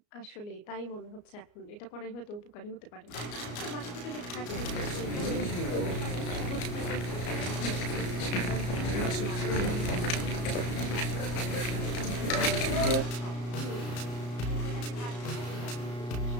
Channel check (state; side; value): late; right; 34 ms